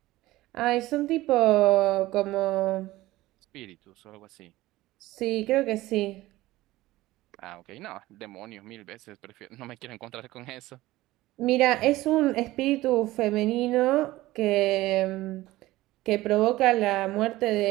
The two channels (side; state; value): left; quieter; 17.5 dB